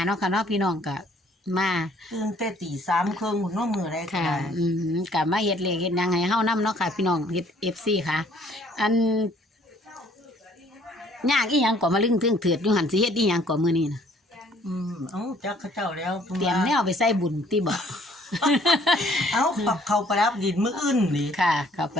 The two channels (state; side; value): normal; both; correlation 0.60